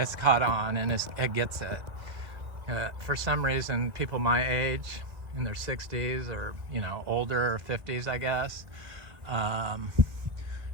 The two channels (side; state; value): left; late; 1.9 ms